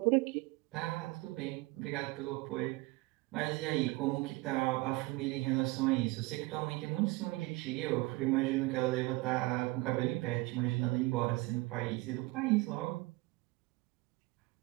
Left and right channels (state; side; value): quieter; left; 22.4 dB